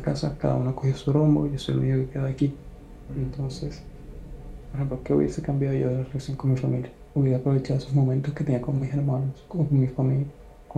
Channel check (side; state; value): both; identical; correlation 1.00